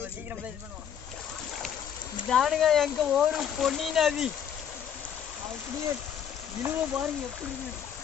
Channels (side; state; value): right; quieter; 8.7 dB